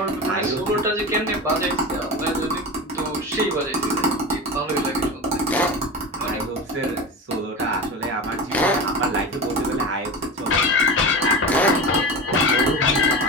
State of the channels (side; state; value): both; normal; correlation 0.27